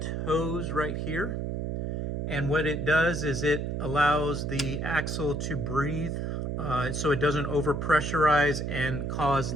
hose right here. And what it does is it allows the axle to breathe, so it doesn't overpressurize and cause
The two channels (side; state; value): right; noise; hum, 2 dB below the sound